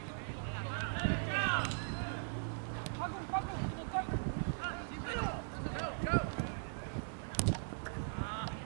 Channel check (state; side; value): silent; left; digital silence